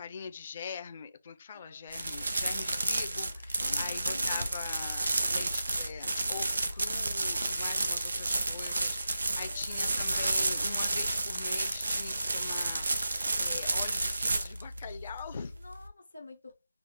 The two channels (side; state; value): both; inverted; correlation -0.91